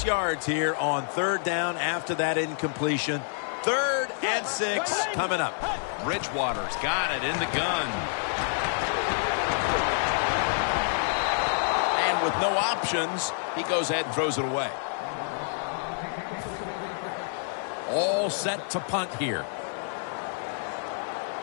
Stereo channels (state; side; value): silent; right; digital silence